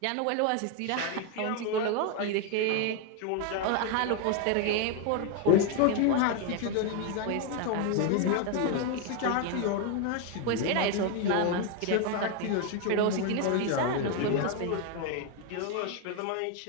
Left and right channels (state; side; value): different; both; correlation 0.01